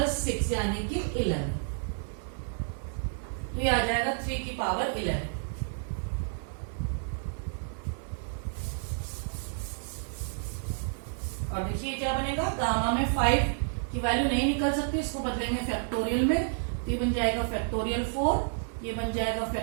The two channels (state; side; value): silent; left; 58 dB below the other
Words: 6 यानी कि 11, तो ये आ जाएगा 3 की पावर 11। और देखिए क्या बनेगा, गामा में 5 की वैल्यू नहीं निकल सकती, इसको बदलेंगे फैक्टोरियल में, तो ये बन जाएगा फैक्टोरियल 4, ये बन जाएगा